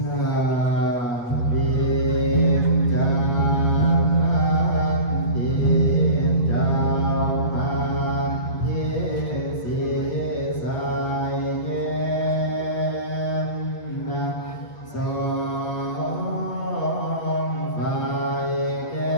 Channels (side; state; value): right; late; 8.2 ms